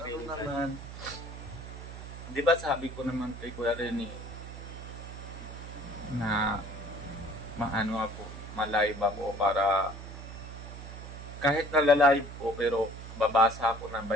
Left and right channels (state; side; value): noise; right; hum, 11 dB below the sound